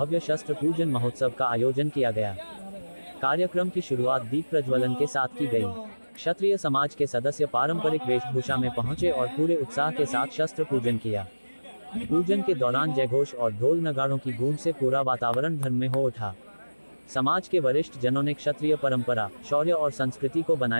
शस्त्र पूजन महोत्सव का आयोजन किया गया। कार्यक्रम की शुरुआत दीप प्रज्वलन के साथ की गई। क्षत्रिय समाज के सदस्य पारंपरिक वेशभूषा में पहुंचे और पूरे उत्साह के साथ शस्त्र पूजन किया। पूजन के दौरान जयघोष और ढोल नगाड़ों की गूंज से पूरा वातावरण धर्ममय हो उठा। समाज के वरिष्ठ जनों ने क्षत्रिय परंपरा, शौर्य और संस्कृति को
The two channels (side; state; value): both; inverted; correlation -1.00